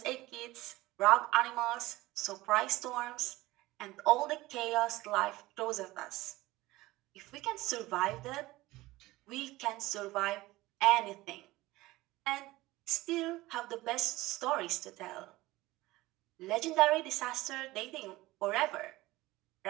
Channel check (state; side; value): quieter; left; 18.7 dB